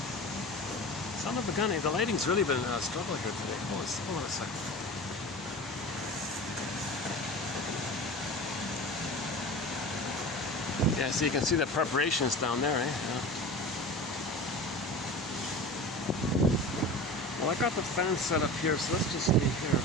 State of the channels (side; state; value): both; normal; correlation 0.33